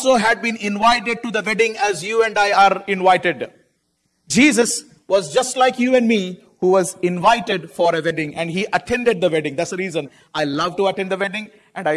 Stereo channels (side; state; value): both; identical; correlation 1.00